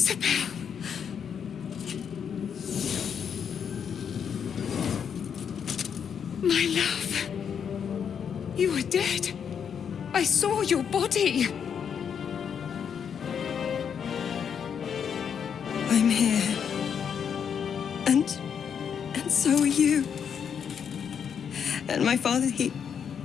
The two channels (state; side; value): quieter; right; 7.5 dB